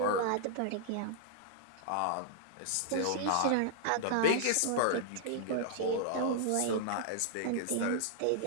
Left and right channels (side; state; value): both; different; correlation -0.01